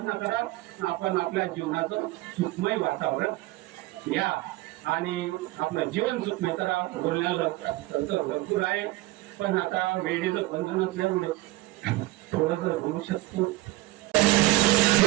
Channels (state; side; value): quieter; left; 19.1 dB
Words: करा, आपण आपल्या जीवनाचं सुखमय वातावरण घ्या आणि आपलं जीवन सुखमय करा. बोलण्याला भरपूर आहे, पण आता वेळेचं बंधन असल्यामुळे थोडस बोलू शकतो.